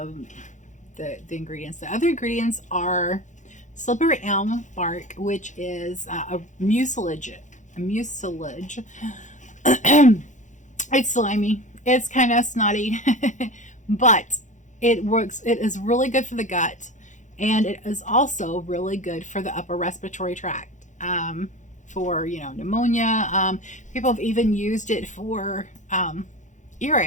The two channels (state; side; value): late; right; 0.36 ms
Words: the ingredients. The other ingredients are slippery elm bark, which is a mucilage. It's slimy. It's kind of snotty, but it works. It is really good for the gut, and it is also really good for the upper respiratory tract. For pneumonia. People have even used it for